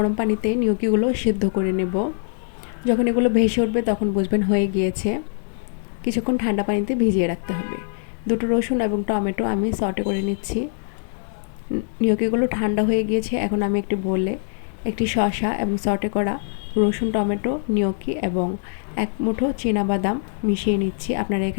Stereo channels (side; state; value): right; silent; digital silence